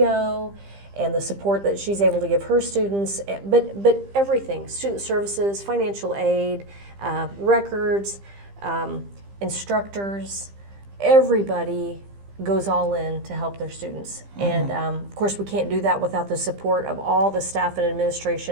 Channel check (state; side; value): late; left; 15 ms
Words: and the support that she's able to give her students, but everything, student services, financial aid, records, instructors, everybody goes all in to help their students. And of course we can't do that without the support of all the staff and